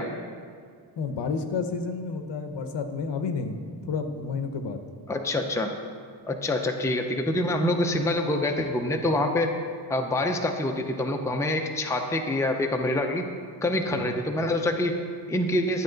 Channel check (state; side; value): normal; both; correlation 0.44